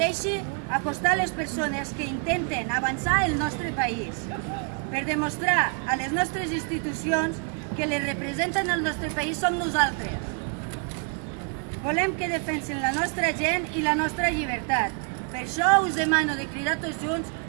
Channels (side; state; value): left; quieter; 38.5 dB